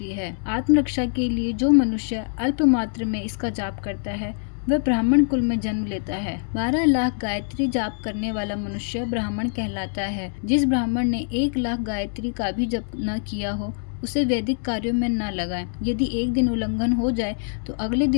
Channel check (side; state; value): right; silent; digital silence